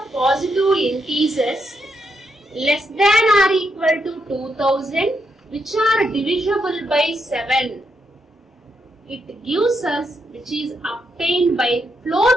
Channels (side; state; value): both; normal; correlation 0.80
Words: positive integers less than or equal to 2000, which are divisible by 7. It gives us, which is obtained by